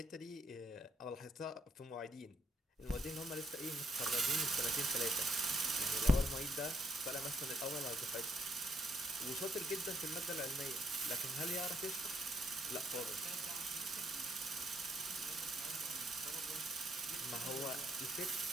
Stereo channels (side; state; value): both; normal; correlation 0.73